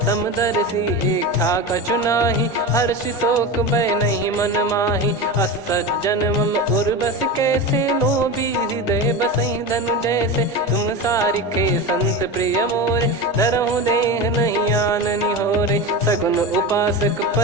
समदर्शी इच्छा कछु नाही हर्षि शोक भय नहीं मन माही असज्जन मम उर बस कैसे लोभी हृदय बसई धनु जैसे तुम सारिखे संत प्रिय मोरे धरहु देह नहीं आननी होरे सगुन उपासक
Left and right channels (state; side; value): normal; both; correlation 0.24